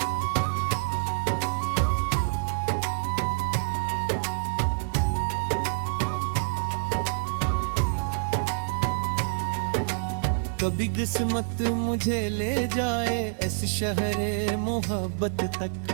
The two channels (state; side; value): silent; left; digital silence